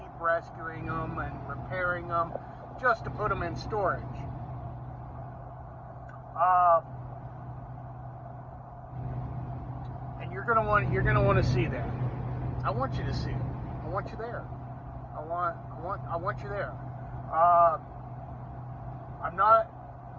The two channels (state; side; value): identical; both; correlation 1.00